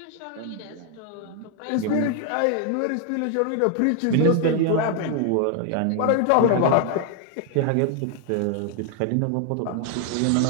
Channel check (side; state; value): both; different; correlation 0.00